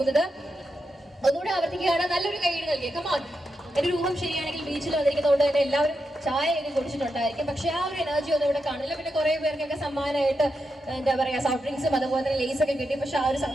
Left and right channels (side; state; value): both; normal; correlation 0.86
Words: ഒന്നുകൂടെ ആവർത്തിക്കുകയാണ്, നല്ലൊരു കൈയ്യടി നൽകിയ കമാൻ. എൻ്റെ ഒരു ഊഹം ശരിയാണെങ്കിൽ ബീച്ചിൽ വന്നിരിക്കുന്നതുകൊണ്ട് തന്നെ എല്ലാവരും ചായയൊക്കെ കുടിച്ചിട്ടുണ്ടായിരിക്കും, പക്ഷെ ആ ഒരു എനർജി ഒന്നും ഇവിടെ കാണില്ല. പിന്നെ കുറേ പേർക്കൊക്കെ സമ്മാനമായിട്ട് എന്താ പറയുക സോഫ്റ്റ് ഡ്രിങ്ക്സും അതുപോലെ തന്നെ ലേസ് ഒക്കെ കിട്ടി, പക്ഷെ ആ ഒരു